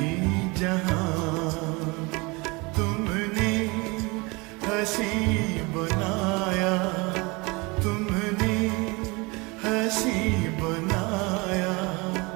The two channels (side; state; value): left; quieter; 26.3 dB